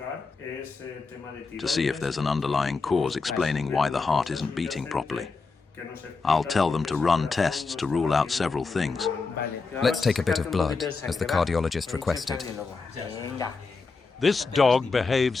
to see if there's an underlying cause explaining why the heart isn't beating properly. I'll tell them to run tests to rule out several things. Let's take a bit of blood, as the cardiologist requested. This dog behaves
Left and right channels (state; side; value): quieter; right; 4.4 dB